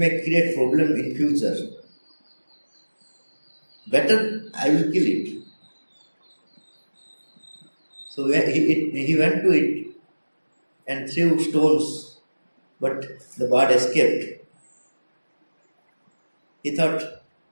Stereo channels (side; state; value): both; inverted; correlation -1.00